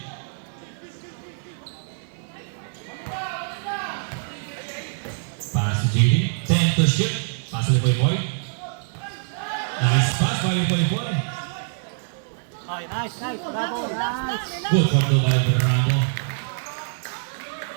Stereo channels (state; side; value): silent; left; digital silence